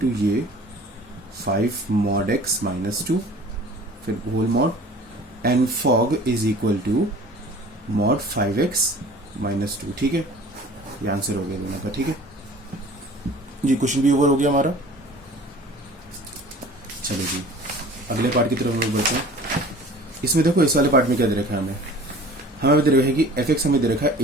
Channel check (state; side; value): normal; both; correlation 0.46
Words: to ये 5 mod x - 2, फिर whole mod, and f o g is equal to mod 5x - 2, ठीक है। ये आंसर हो गया दोनों का, ठीक है जी। क्वेश्चन भी ओवर हो गया हमारा। चलो जी अगले पार्ट की तरफ हम लोग बढ़ते हैं। इसमें देखो इस वाले पार्ट में क्या दे रखा है हमें दे रखा है कि एफ एक्स हमें दे रखा है